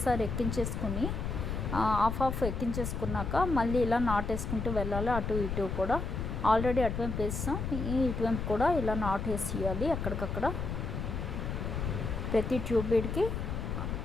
ఎక్కించేసుకుని హాఫ్ ఎక్కించేసుకున్నాక మళ్ళీ ఇలా నాట్ వేసుకుంటూ వెళ్ళాలి. అటు ఇటు కూడా ఆల్రెడీ అటువైపు వేస్తాం, ఇటువైపు కూడా ఇలా నాట్ వేసేయాలి. అక్కడికక్కడ ప్రతి 2 బీడ్కి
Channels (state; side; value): noise; left; rumble, 3 dB below the sound